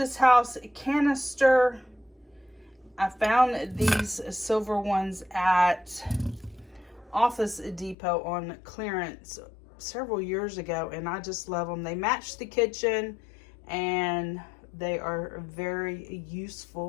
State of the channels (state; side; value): drops out; right; at 8.0 s